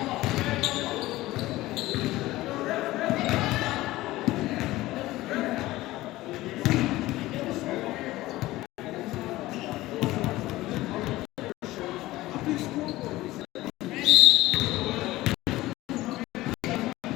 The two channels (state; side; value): quieter; right; 17.6 dB